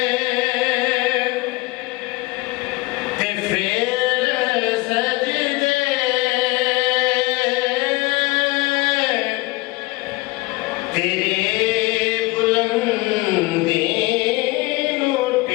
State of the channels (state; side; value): quieter; right; 22.2 dB